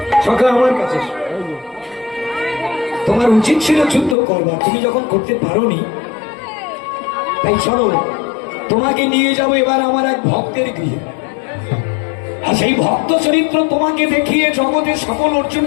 সকাল আমার কাছে, তোমার উচিত ছিল যুদ্ধ করবার, তুমি যখন করতে পারোনি, তাই চলো তোমাকে নিয়ে যাবো এবার আমার এক ভক্তের গৃহে। আর সেই ভক্ত চরিত্র তোমাকে দেখিয়ে, জগতের সকল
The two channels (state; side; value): drops out; right; at 4.2 s